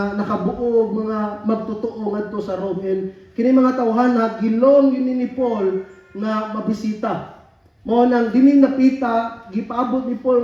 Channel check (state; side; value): identical; both; correlation 1.00